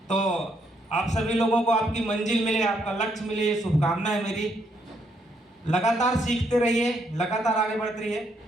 तो आप सभी लोगों को आपकी मंजिल मिले, आपका लक्ष्य मिले, ये शुभकामना है मेरी। लगातार सीखते रहिए, लगातार आगे बढ़ते रहिए।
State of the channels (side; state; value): both; normal; correlation 0.74